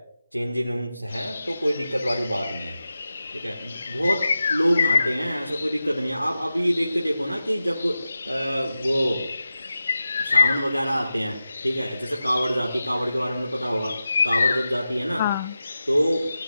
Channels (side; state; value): both; inverted; correlation -0.93